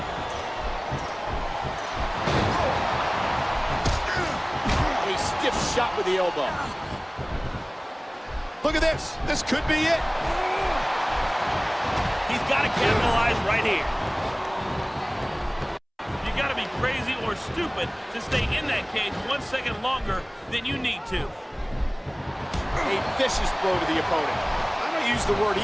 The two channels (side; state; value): both; identical; correlation 1.00